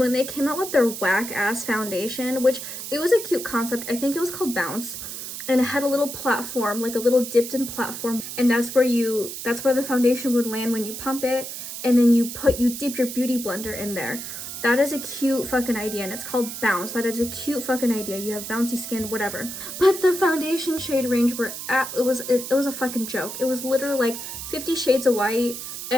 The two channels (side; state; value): right; noise; hiss, 8 dB below the sound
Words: they came out with their whack ass foundation, which it was a cute concept. I think it was called Bounce. And it had a little platform, like a little dipped in platform, and that's where the foundation would land when you pump it, and then you dip your Beauty Blender in there. That is a cute fucking idea, and it's called Bounce. That is a cute fucking idea. You have bouncy skin, whatever. But the foundation shade range it was a fucking joke. It was literally like 50 shades of white